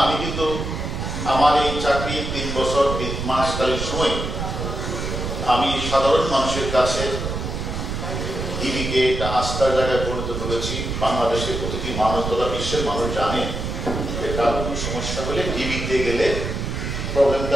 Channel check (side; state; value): right; noise; rumble, 4 dB below the sound